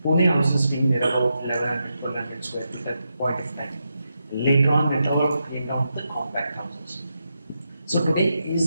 Pune houses being there about 1100, 1200 square feet at the point of time. Later on, it all came down to the compact houses. So today,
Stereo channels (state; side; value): inverted; both; correlation -0.86